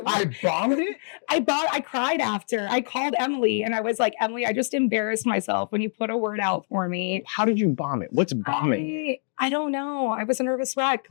bombed it? I cried after. I called Emily and I was like, Emily, I just embarrassed myself when you put a word out for me. How did you bomb it? What's bombing? I don't know. I was a nervous wreck.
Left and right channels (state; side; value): silent; right; digital silence